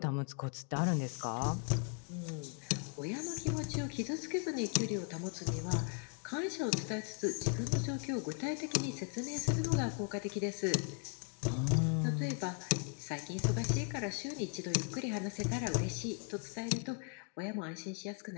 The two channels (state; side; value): quieter; right; 36.5 dB